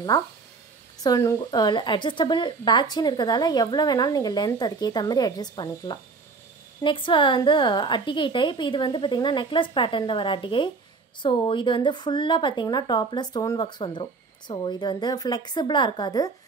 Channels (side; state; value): left; quieter; 4.4 dB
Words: ஸோ அட்ஜஸ்டபிள் பேக் செயின் இருக்கிறதால எவ்வளோ வேணாலும் நீங்கள் லென்த் அதுக்கேற்ற மாதிரி அட்ஜஸ்ட் பண்ணிக்கலாம். நெக்ஸ்ட் வந்து அட்டிகை டைப். இது வந்து பார்த்திங்கன்னா நெக்லஸ் பேட்டர்னில் வர அட்டிகை. ஸோ இது வந்து ஃபுல்லாக பார்த்திங்கன்னா டாப்பில் ஸ்டோன் ஒர்க்ஸ் வந்துடும். ஸோ இது வந்து ஃப்ளெக்சிபிளாக இருக்காது.